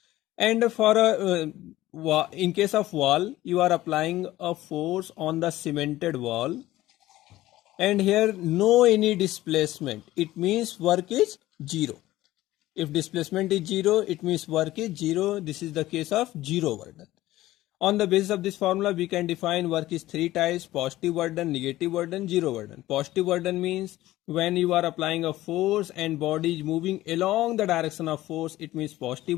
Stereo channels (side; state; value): right; quieter; 16.1 dB